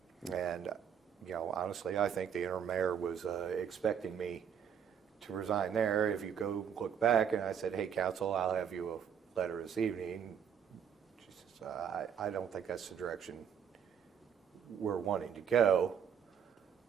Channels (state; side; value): quieter; left; 8.0 dB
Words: And, honestly, I think the interim mayor was expecting me to resign there. If you go look back, and I said, hey, council, I'll have you a letter this evening. She says, I don't think that's the direction we're wanting to go.